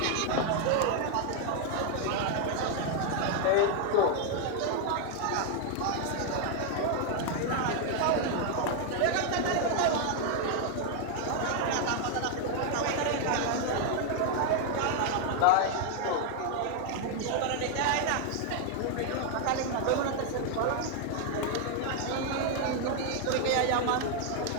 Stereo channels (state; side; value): different; both; correlation 0.00